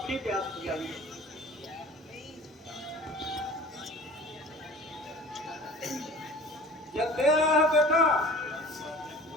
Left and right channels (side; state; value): both; normal; correlation 0.42